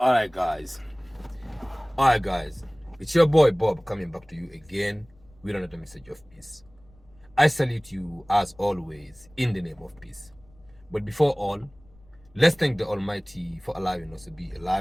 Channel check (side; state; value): left; noise; rumble, 28 dB below the sound